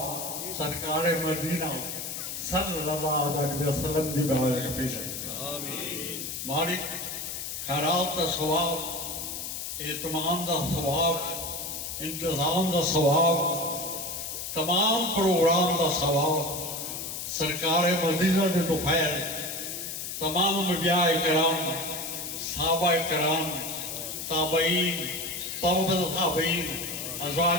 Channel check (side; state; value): left; noise; hiss, 6 dB below the sound